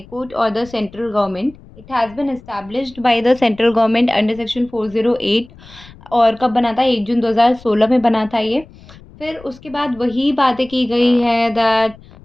Court or the central government. It has been established by the central government under section 408 और कब बना था? 1 जून 2016 में बना था ये। फिर उसके बाद वही बातें की गई है दैट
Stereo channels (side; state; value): left; noise; rumble, 22 dB below the sound